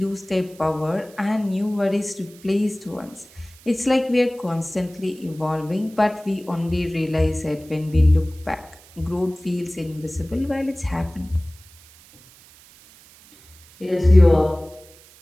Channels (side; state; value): right; noise; hiss, 24 dB below the sound